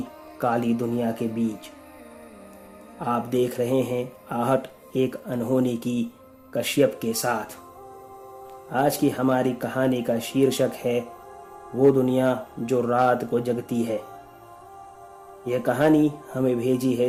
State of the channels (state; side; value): identical; both; correlation 1.00